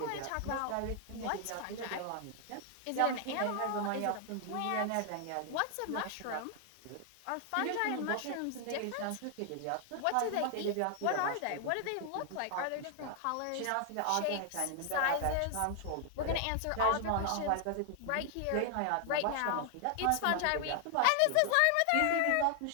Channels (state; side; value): different; both; correlation 0.00